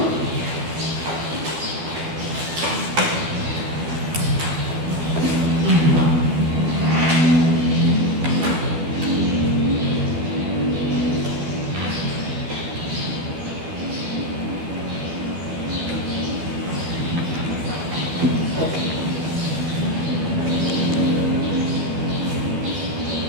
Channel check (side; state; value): left; late; 12 ms